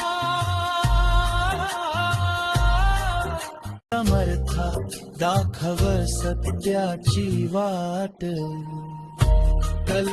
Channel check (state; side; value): identical; both; correlation 1.00